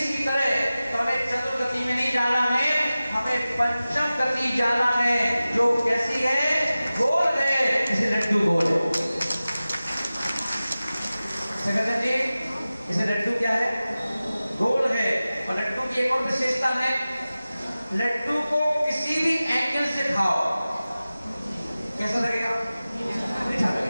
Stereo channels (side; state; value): both; inverted; correlation -0.96